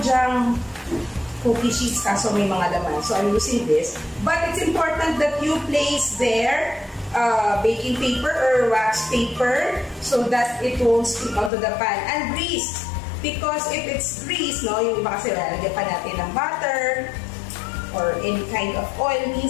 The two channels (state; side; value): drops out; right; at 11.5 s